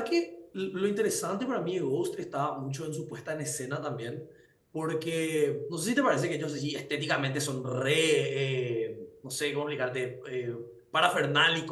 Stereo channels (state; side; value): identical; both; correlation 1.00